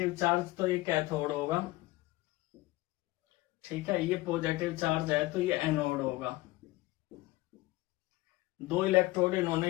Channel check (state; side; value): quieter; right; 19.7 dB